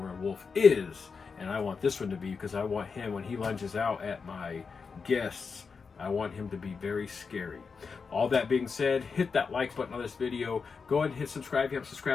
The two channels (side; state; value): right; quieter; 5.3 dB